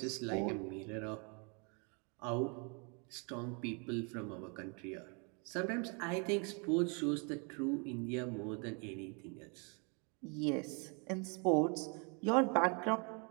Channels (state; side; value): quieter; left; 35.1 dB